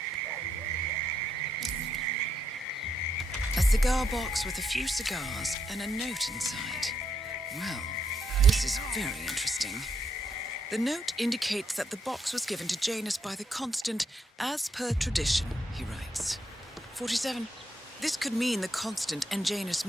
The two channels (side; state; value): both; normal; correlation 0.78